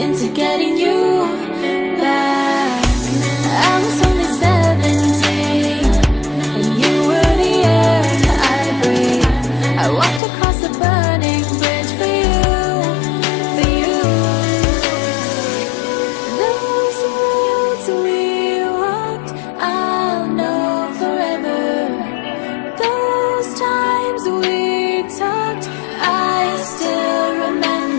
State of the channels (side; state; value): right; drops out; at 10.2 s